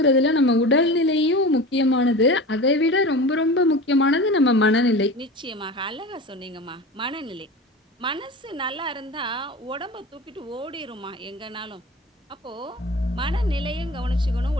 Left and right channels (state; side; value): normal; both; correlation 0.33